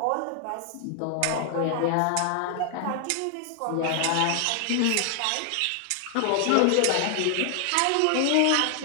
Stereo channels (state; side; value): different; both; correlation 0.00